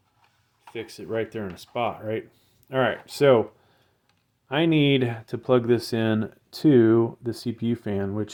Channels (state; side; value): identical; both; correlation 1.00